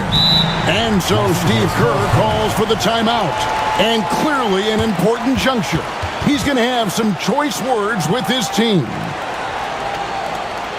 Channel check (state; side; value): identical; both; correlation 1.00